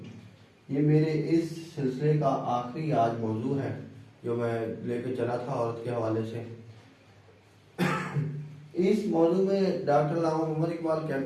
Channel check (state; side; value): identical; both; correlation 1.00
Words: یہ میرے اس سلسلے کا آخری آج موضوع ہے جو میں لے کے چلا تھا عورت کے حوالے سے۔ اس موضوع میں ڈاکٹر علامہ محمد اقبال